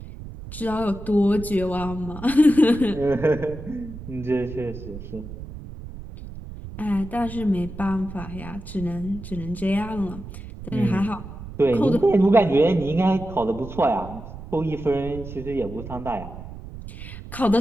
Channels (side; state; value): right; noise; rumble, 12 dB below the sound